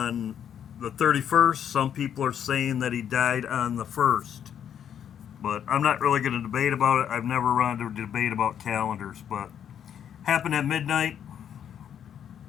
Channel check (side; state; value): right; quieter; 9.1 dB